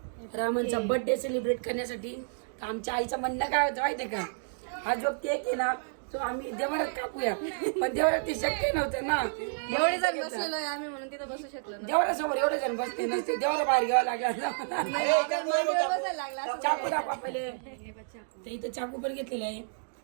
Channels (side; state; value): left; silent; digital silence